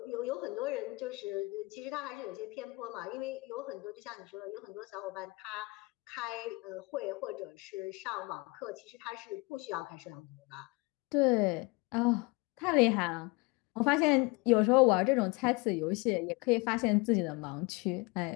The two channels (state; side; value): quieter; right; 26.0 dB